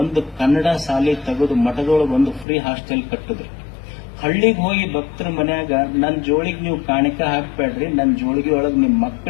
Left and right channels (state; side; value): drops out; right; at 2.5 s